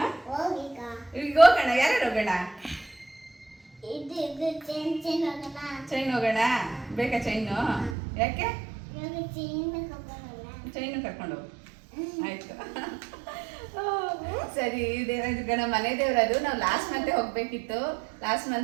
ಈಗ ಹೋಗೋಣ. ಯಾರು ಹೋಗೋಣ? ಚೈನ್ ಹೋಗೋಣ. ಬೇಕಾ ಚೈನು? ಯಾಕೆ? ಚೈನು ಕರ್ಕೊಂಡು ಹೋಗು. ಆಯ್ತು, ಸರಿ. ದೇವರಾಯನದುರ್ಗ ನಮ್ಮ ಮನೆ ದೇವರದು. ನಾವು ಲಾಸ್ಟ್ ಮಂತೆ ಹೋಗ್ಬೇಕಿತ್ತು. ಲಾಸ್ಟ್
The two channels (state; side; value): drops out; left; at 8.0 s